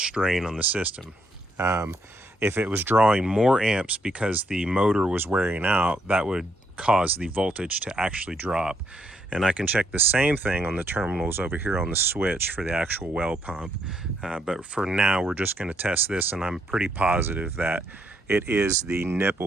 on the system. If it was drawing more amps because the motor was wearing out, that would cause the voltage to actually drop. And I can check the same thing on the terminals over here on the switch for the actual well pump. But for now, we're just going to test this, and I'm pretty positive that it is the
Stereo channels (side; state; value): both; normal; correlation 0.74